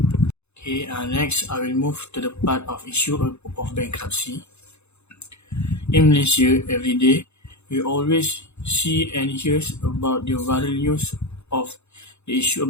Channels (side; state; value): right; late; 0.81 ms